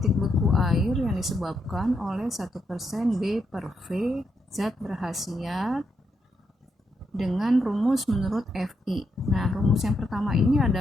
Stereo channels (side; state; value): both; normal; correlation 0.81